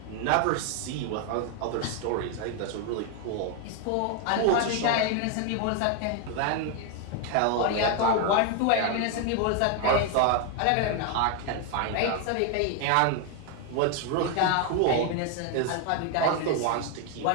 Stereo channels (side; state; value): both; different; correlation 0.00